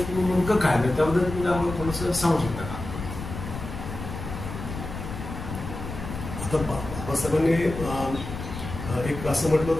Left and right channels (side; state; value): left; noise; rumble, 8 dB below the sound